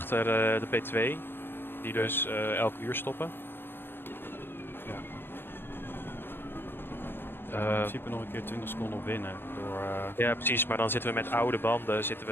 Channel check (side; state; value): right; late; 0.10 ms